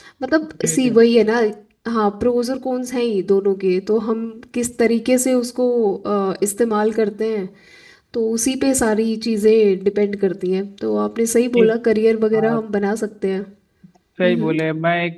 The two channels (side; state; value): both; identical; correlation 1.00